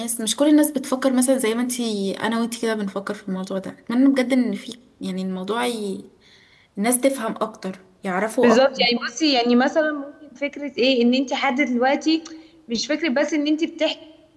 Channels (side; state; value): both; identical; correlation 1.00